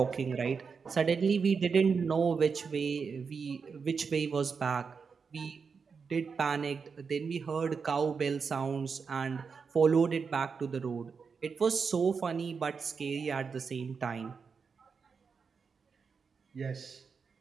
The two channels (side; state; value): left; quieter; 5.5 dB